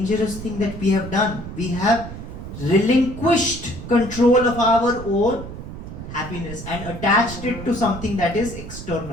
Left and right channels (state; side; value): noise; right; rumble, 10 dB below the sound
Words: thing that we have done. We have relinquished control of our own happiness and attached it to something that is